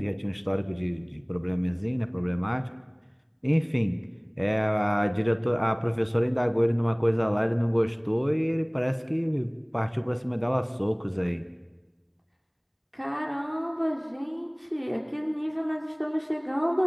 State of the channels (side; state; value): both; identical; correlation 1.00